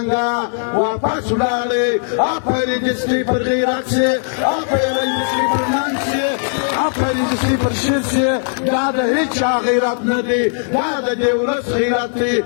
واپس ولاړې آفرین دې سپي پر غیرت شي آفرین دې سپي پر ننګ شي آفرین دې سپي پر شر شي دا د هېچ چا غیرت نه دی دا د دې ولس غیرت دی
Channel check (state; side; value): silent; right; 61 dB below the other